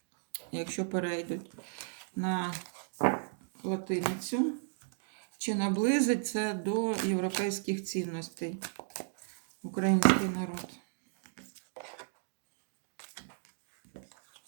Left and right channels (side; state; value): left; silent; digital silence